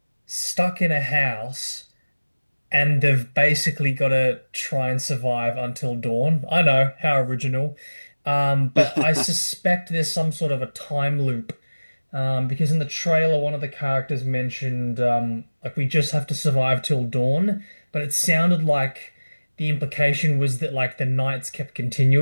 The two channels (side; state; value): both; inverted; correlation -1.00